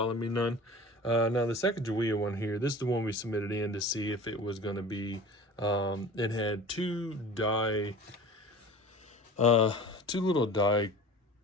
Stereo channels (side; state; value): both; normal; correlation 0.40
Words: me none. Now the Sacagawea one here, this is the one we submitted in to see if it was going to be, it had two little die